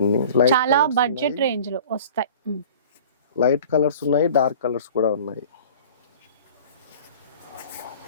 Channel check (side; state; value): both; inverted; correlation -0.44